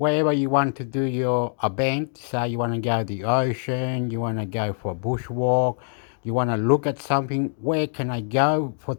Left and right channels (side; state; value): right; silent; digital silence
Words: you want to do your event, say you want to go to the ocean, you want to go for a bushwalk, you want to look at something, where can I go for